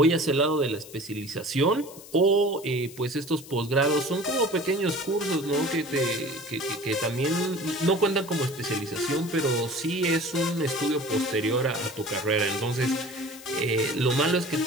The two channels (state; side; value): noise; left; hiss, 18 dB below the sound